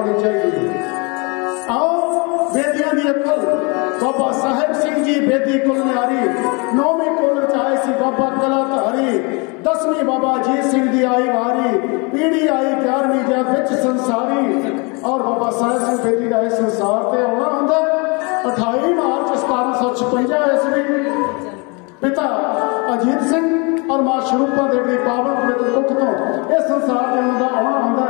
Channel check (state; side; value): quieter; right; 30.7 dB